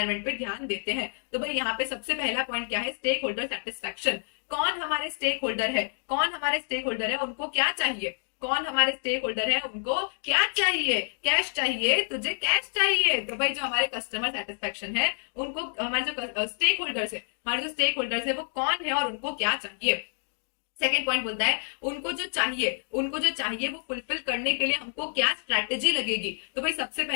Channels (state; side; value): silent; right; digital silence